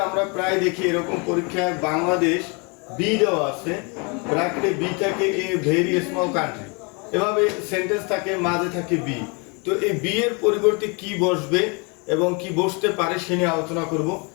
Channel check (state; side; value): quieter; right; 32.1 dB